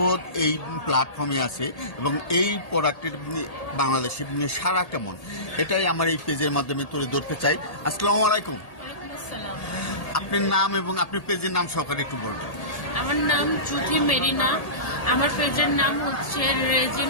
এই প্ল্যাটফর্মে আছে এবং এই প্রোডাক্টের বাংলাদেশে সারা কেমন, এটাই আমার এই পেজের মাধ্যমে তুলে ধরতে চাই। আসসালামু আলাইকুম। আপনার নাম এবং আপনার পেজের নাম সহকারে একটু বলবেন। আমার নাম জুথি মেরিনা। আমার পেজের নাম হচ্ছে রেজিন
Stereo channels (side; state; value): right; late; 1.8 ms